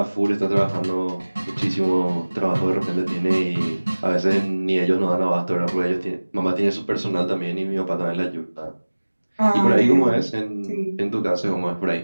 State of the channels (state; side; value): inverted; both; correlation -1.00